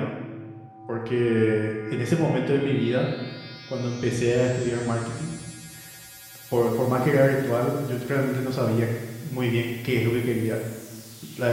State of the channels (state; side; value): identical; both; correlation 1.00